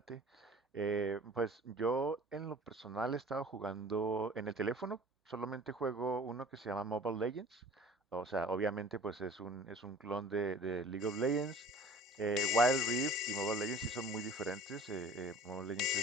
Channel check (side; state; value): both; normal; correlation 0.46